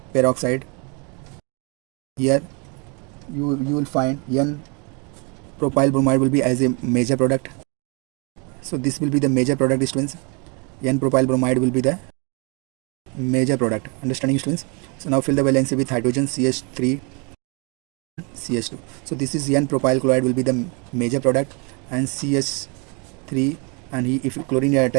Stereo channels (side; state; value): left; quieter; 32.7 dB